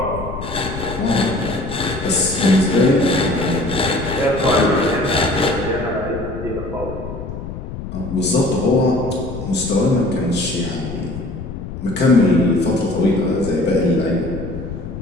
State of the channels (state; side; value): noise; left; rumble, 9 dB below the sound